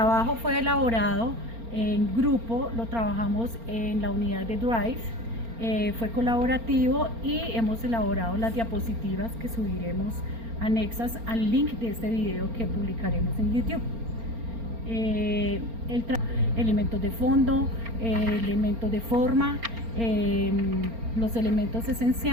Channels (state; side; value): late; left; 4.3 ms